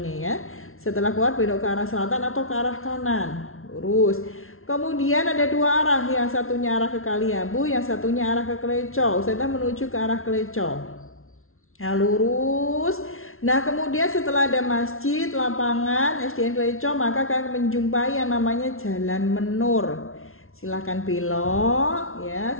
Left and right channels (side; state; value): right; late; 0.62 ms